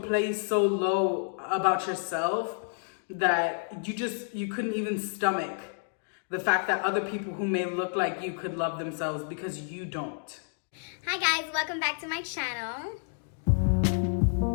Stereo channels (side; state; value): right; silent; digital silence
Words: place so low about yourself that you couldn't even stomach the fact that other people who may look like you could love themselves because you don't. Hi guys, welcome back to my channel.